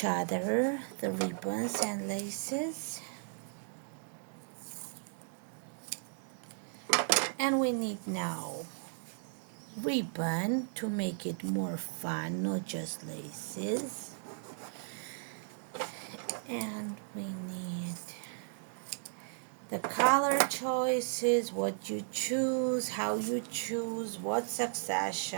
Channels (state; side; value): silent; left; digital silence